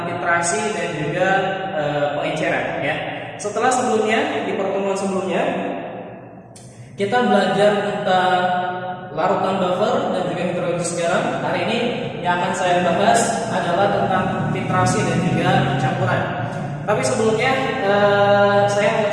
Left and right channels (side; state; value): both; identical; correlation 1.00